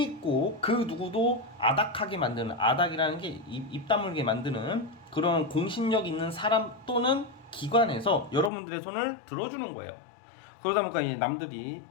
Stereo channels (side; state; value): right; drops out; at 8.5 s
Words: 그 누구도 아닥하게 만드는, 아닥이라는 게 입 다물게 만드는 그런 공신력 있는 사람 또는 기관에서 여러분들의 손을 들어주는 거예요. 그러다 보니까 이 남들이